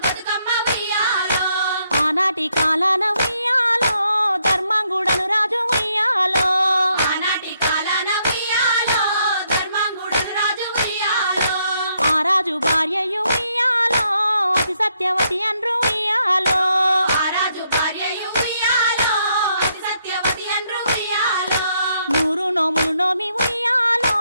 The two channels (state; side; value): inverted; both; correlation -0.75